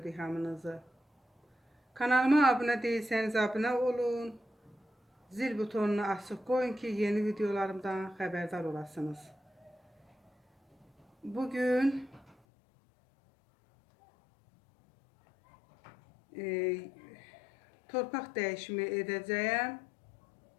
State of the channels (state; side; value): drops out; right; at 12.4 s